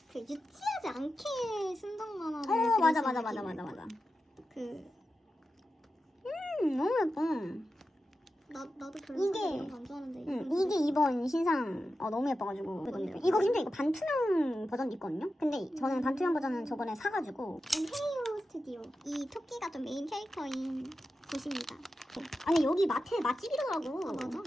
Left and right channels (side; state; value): both; normal; correlation 0.91